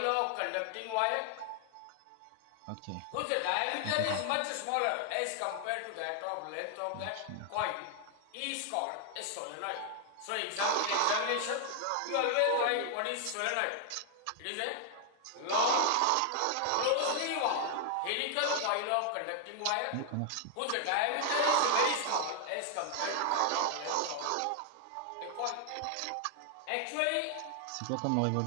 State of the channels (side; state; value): both; different; correlation 0.00